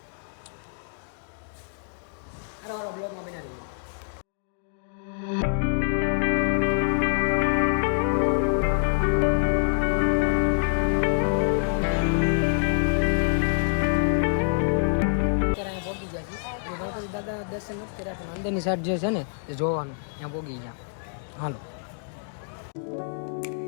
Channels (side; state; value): right; silent; digital silence